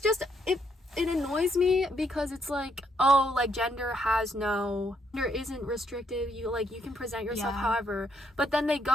it annoys me because it's like, oh, like gender isn't restrictive. You can present yourself however, but then they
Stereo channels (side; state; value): both; normal; correlation 0.73